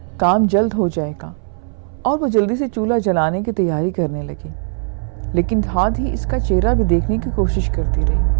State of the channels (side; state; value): left; silent; 64 dB below the other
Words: کام جلد ہو جائے گا۔ اور وہ جلدی سے چولہا جلانے کی تیاری کرنے لگی، لیکن ساتھ ہی اس کا چہرہ بھی دیکھنے کی کوشش کرتی